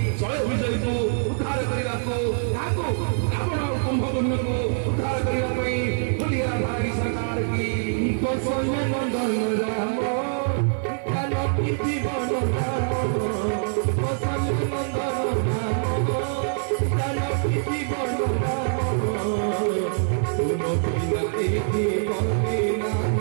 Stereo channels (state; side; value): silent; left; digital silence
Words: ଜୟ ବିଜୟକୁ ଉଦ୍ଧାର କରିବାକୁ, ତାକୁ ରାବଣ ଆଉ କୁମ୍ଭକର୍ଣ୍ଣକୁ ଉଦ୍ଧାର କରିବା ପାଇଁ ବୋଲି ରାଧାରାଣୀ ସରକାର କି କୌଶଲ୍ୟ ନନ୍ଦନ ରାମ